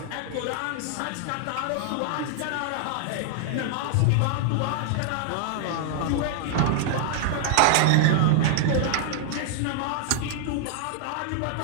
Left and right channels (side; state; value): both; different; correlation -0.01